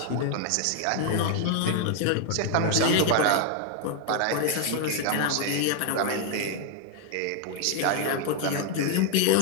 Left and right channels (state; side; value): different; both; correlation 0.00